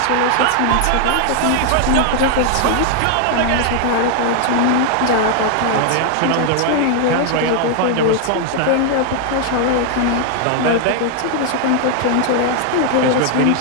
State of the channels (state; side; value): different; both; correlation 0.00